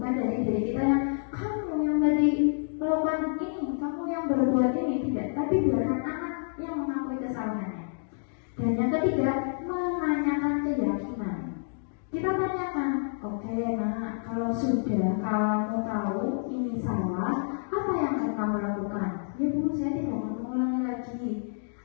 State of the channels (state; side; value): silent; right; digital silence